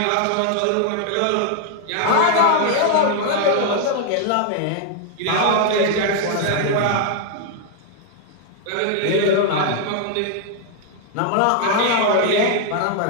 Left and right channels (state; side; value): different; both; correlation 0.00